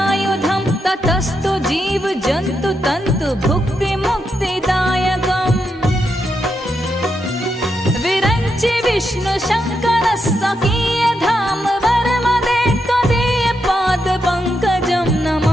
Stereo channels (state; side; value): normal; both; correlation 0.83